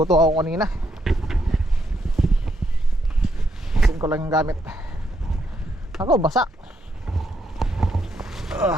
ako kanina. ko lang yung gamit. Ako, basa.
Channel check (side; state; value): both; normal; correlation 0.77